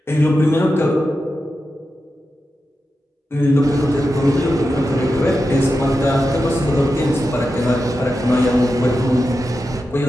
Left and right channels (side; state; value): both; normal; correlation 0.90